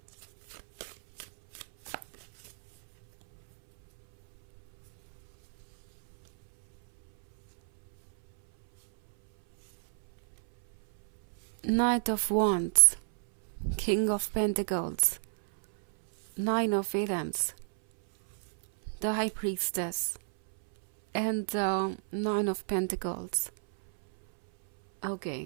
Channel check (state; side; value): silent; left; 58 dB below the other